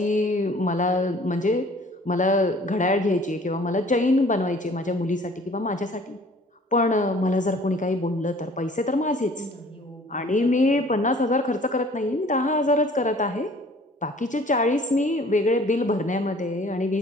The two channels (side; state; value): both; normal; correlation 0.52